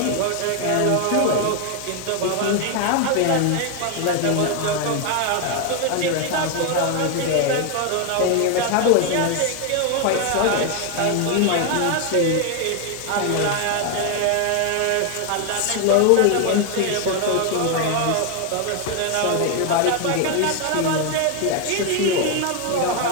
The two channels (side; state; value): both; different; correlation 0.01